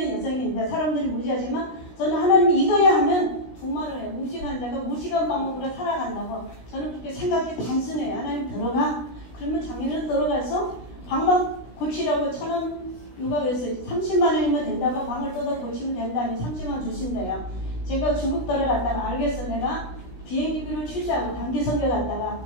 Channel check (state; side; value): late; right; 16 ms